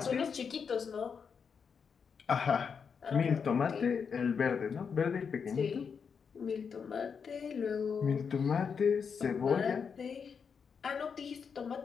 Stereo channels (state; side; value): quieter; right; 6.3 dB